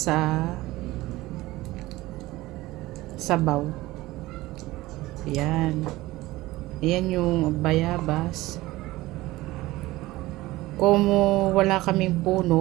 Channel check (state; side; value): quieter; left; 18.4 dB